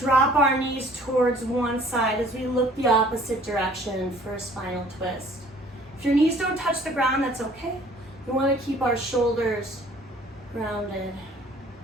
our knees towards one side as we look the opposite direction for a spinal twist. If your knees don't touch the ground, that's okay. We want to keep our shoulders grounded.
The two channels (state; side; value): normal; both; correlation 0.54